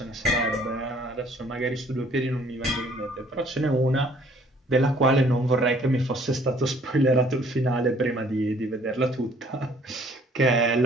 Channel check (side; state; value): both; normal; correlation 0.58